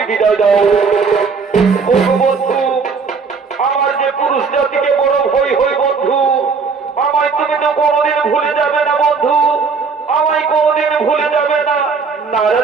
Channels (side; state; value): left; quieter; 5.1 dB